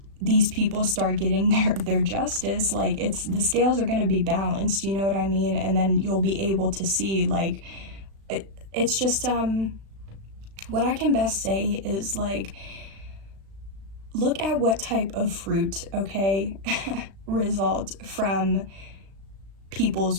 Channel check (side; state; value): left; late; 36 ms